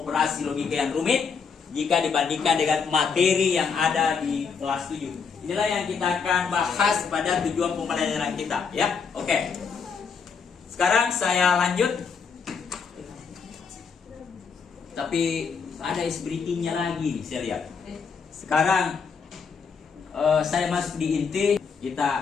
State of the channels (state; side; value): quieter; right; 5.8 dB